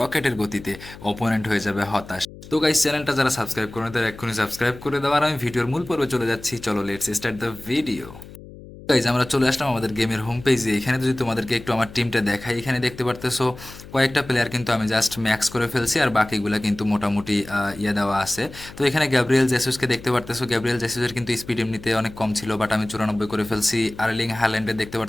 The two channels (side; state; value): left; noise; hum, 17 dB below the sound